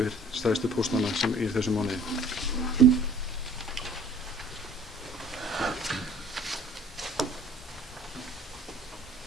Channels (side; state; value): both; normal; correlation 0.53